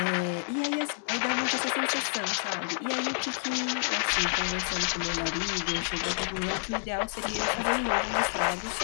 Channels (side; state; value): right; silent; 59 dB below the other